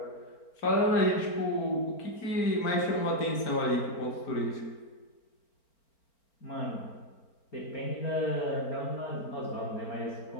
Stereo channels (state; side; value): late; right; 4.4 ms